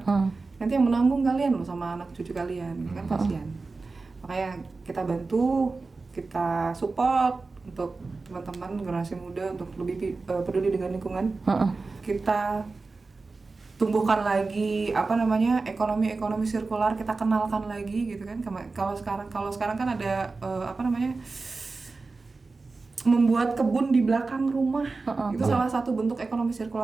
nanti yang menanggung kalian loh sama anak cucu kalian, kan kasihan. Makanya kita bantu, kita support untuk teman-teman generasi muda untuk lebih peduli dengan lingkungan. Kita tumbuhkan lagi ekonomi sirkular, kita kenalkan lagi gitu kan. Kalau sekarang kan ada membuat kebun di belakang rumah, itu salah satu bentuk ekonomi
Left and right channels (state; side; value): quieter; left; 3.9 dB